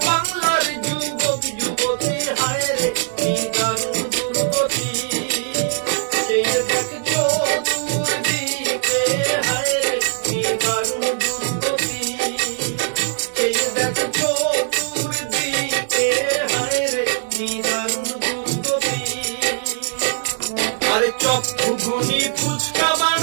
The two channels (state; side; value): silent; left; digital silence